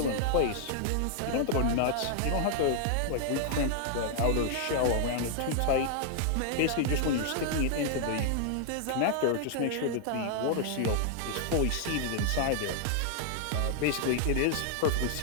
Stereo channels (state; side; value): different; both; correlation 0.00